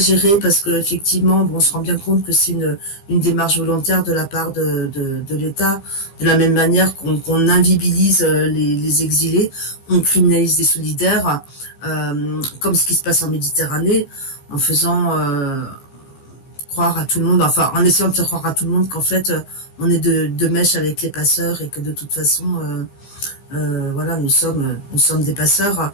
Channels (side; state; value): right; late; 15 ms